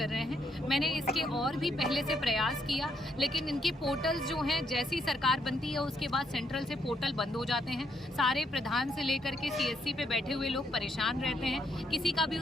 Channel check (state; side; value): normal; both; correlation 0.74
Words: रहे हैं, मैंने इसके और भी पहले से प्रयास किया, लेकिन इनके पोर्टल्स जो हैं, जैसी सरकार बनती है उसके बाद सेंट्रल से पोर्टल बंद हो जाते हैं। सारे प्रधान से लेकर के CSC पे बैठे हुए लोग परेशान रहते हैं, किसी का भी